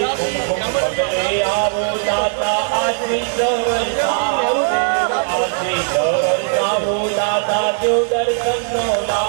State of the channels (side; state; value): left; silent; digital silence